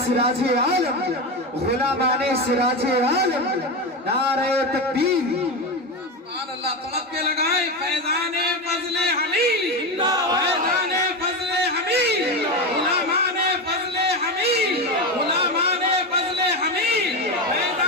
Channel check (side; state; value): both; normal; correlation 0.17